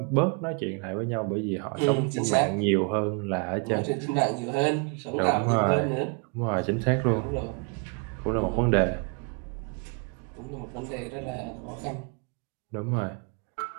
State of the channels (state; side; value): quieter; left; 35.4 dB